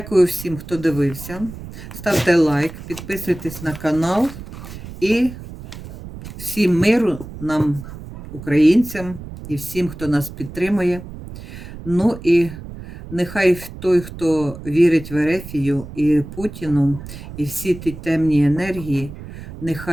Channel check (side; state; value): right; noise; rumble, 13 dB below the sound